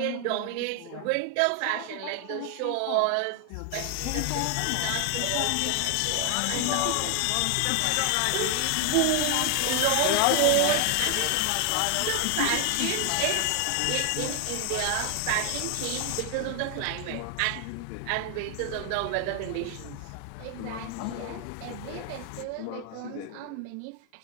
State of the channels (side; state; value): both; different; correlation 0.00